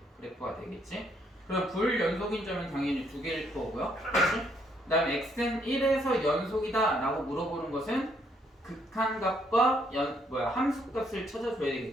그래프가 되겠지. 그럼 불연속인 점은 당연히 두 개일 거고요. 그렇지? 그 다음에 x는 1에서 연속이다 라고 물어보는 것은 극한값과 함수값을 찾아줘야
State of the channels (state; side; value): normal; both; correlation 0.71